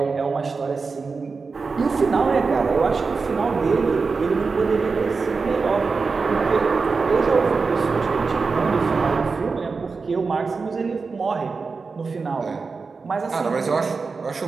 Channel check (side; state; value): left; quieter; 4.6 dB